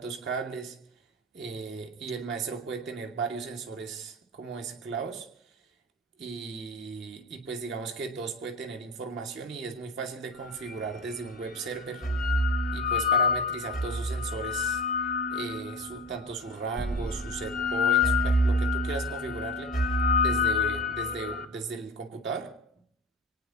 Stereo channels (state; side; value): normal; both; correlation 0.30